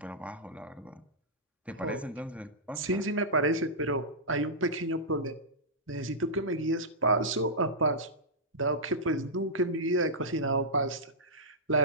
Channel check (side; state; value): both; normal; correlation -0.13